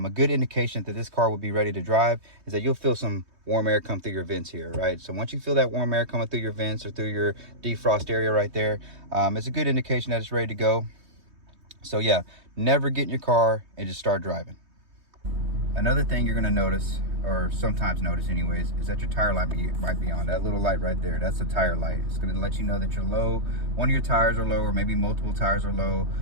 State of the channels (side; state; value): left; late; 3.2 ms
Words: good indication that this car will be ready to drive is that you'll feel some warm air come through your vents here, right? So once you feel that warm air coming through your vents or through your defrost area right there, it's a good indication that it's ready to go. So yeah, never get in your car and just start driving. Another thing you're gonna notice, or sometimes notice anyways, is that your tire light might be on. That little light right there, that's a tire light. It's gonna let you know that you're low, one of your tires are low, or maybe multiple tires are low,